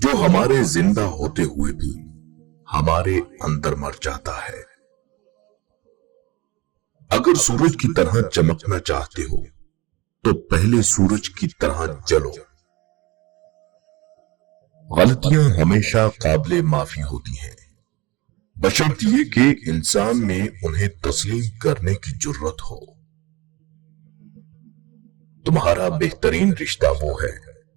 हमारे जिंदा होते हुए भी हमारे अंदर मर जाता है। अगर सूरज की तरह चमकना चाहते हो, तो पहले सूरज की तरह जलो। गलतियां हमेशा काबिले माफी होती हैं, बशर्ते कि इंसान में उन्हें तस्लीम करने की जुर्रत हो। तुम्हारा बेहतरीन रिश्ता वो है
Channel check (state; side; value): quieter; left; 22.6 dB